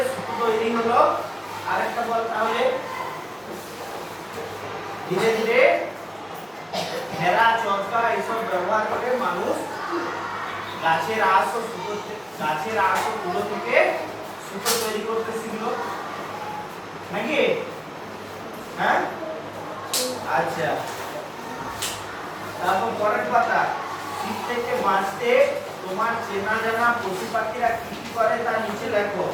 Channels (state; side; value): identical; both; correlation 1.00